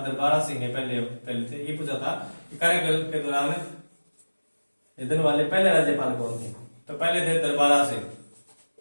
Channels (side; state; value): both; inverted; correlation -1.00